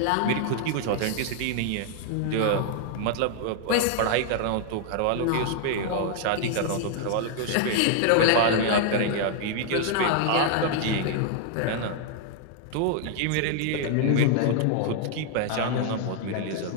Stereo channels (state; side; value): different; both; correlation 0.00